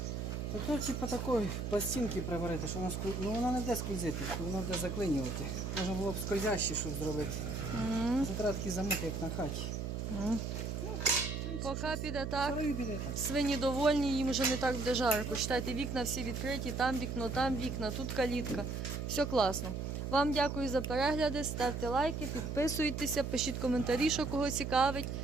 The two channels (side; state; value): right; noise; hum, 3 dB below the sound